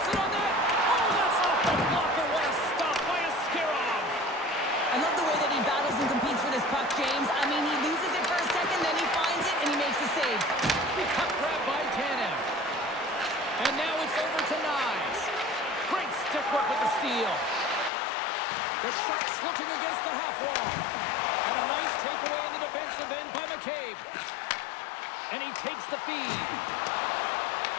it on net. Oh, that's off the blocker. What a stop by Askarov. I love the way that he battles and competes for this puck, James. I mean, he loses it for a second, then he finds it, and he makes a save. Puck grab by Tanev. And now it's over to Nyes. Great stick work with the steal. The Sharks looking against the half wall. And a nice takeaway in the defensive end by McCabe. And he takes the feed.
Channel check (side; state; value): right; drops out; at 17.9 s